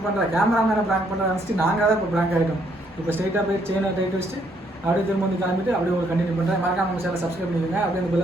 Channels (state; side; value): normal; both; correlation 0.70